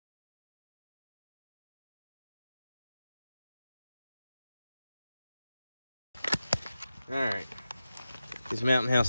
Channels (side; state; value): both; inverted; correlation -0.92